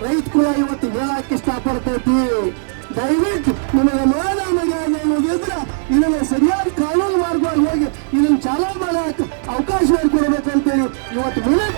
ರೈತ ಕೂಡ ಇವತ್ತು ಹೇಳಕ್ಕೆ ಇಷ್ಟಪಡ್ತೈತಿ. ದಯವಿಟ್ಟು ನಿಮಗೆ ಮಾನ ಮರ್ಯಾದೆ ಅನ್ನೋದಿದ್ರೆ ಇದನ್ನ ಸರಿಯಾದ ಕಾನೂನು ಮಾರ್ಗವಾಗಿ ಹೋಗಿ ಇದನ್ನ ಚಾಲೂ ಮಾಡಕ್ಕೆ ಅವಕಾಶ ಮಾಡಿಕೊಡ್ಬೇಕಂತೇಳಿ ಇವತ್ತು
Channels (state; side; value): silent; left; 61 dB below the other